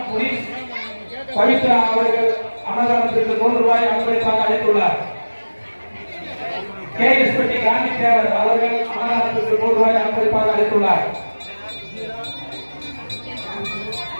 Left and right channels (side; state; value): both; inverted; correlation -1.00